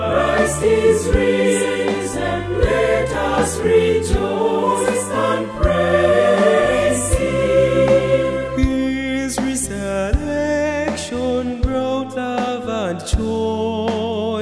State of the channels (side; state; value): both; identical; correlation 1.00